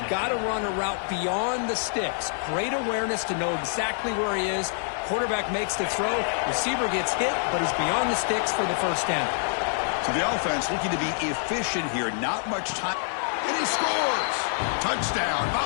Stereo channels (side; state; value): right; silent; 61 dB below the other